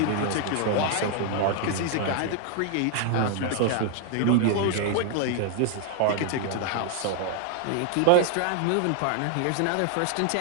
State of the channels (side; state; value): both; different; correlation 0.00